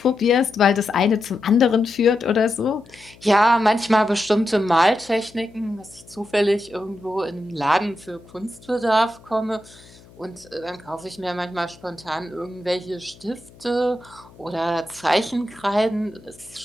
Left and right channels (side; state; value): left; noise; hum, 24 dB below the sound